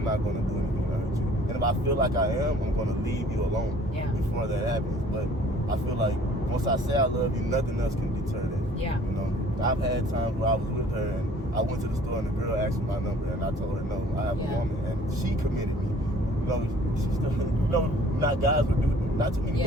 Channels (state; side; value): normal; both; correlation 0.53